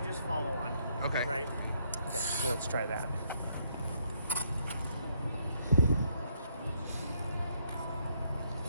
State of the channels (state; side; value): inverted; both; correlation -0.72